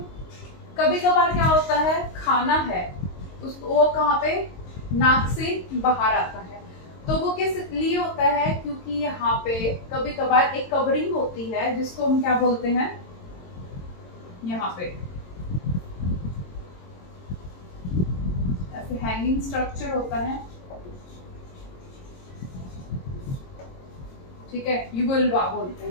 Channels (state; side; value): late; right; 22 ms